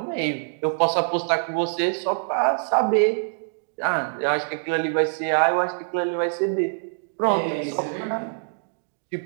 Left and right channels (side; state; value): left; silent; 61 dB below the other